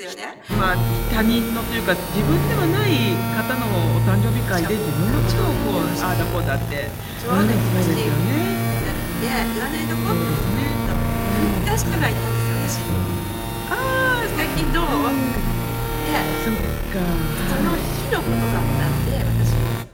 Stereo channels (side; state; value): both; identical; correlation 1.00